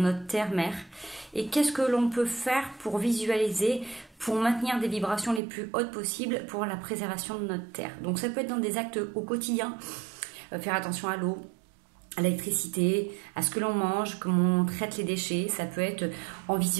terre-mère. Et qu'est-ce que l'on peut faire pour visualiser, pour maintenir des vibrations les plus hautes possibles pour la préservation de notre terre. Donc ça peut être dans des actes au quotidien, faire attention à l'eau, à l'électricité, à ce que l'on mange, comment on traite les déchets. Ça peut être en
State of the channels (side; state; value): left; drops out; at 5.4 s